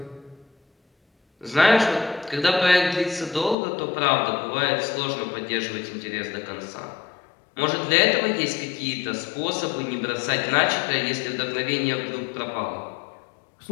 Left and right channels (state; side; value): drops out; right; at 3.6 s